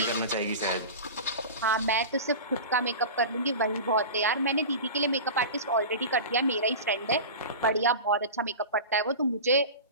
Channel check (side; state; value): both; inverted; correlation -0.31